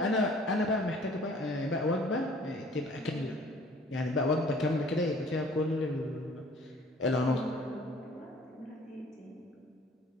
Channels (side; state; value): both; normal; correlation 0.53